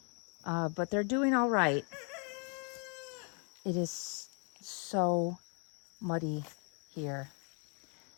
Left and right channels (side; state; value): right; quieter; 38.6 dB